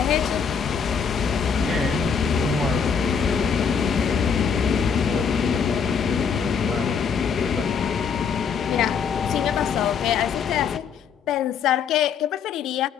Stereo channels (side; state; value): right; quieter; 6.7 dB